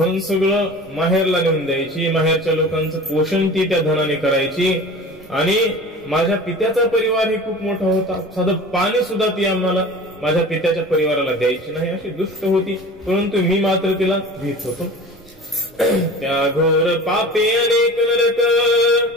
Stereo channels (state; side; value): noise; right; rumble, 27 dB below the sound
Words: सगळं माहेरला नेऊन द्यायची, माहेरच्या लोकांचं पोषण ती त्या धनाने करायची आणि माझ्या पित्याचा परिवार हे खूप मोठा होता, साधं पाणी सुद्धा ती आम्हाला माझ्या पित्याच्या परिवाराला द्यायची नाही, अशी दुष्ट होती. परंतु मी मात्र तिला भीत होतो. त्या घोर पापे अनेक नरक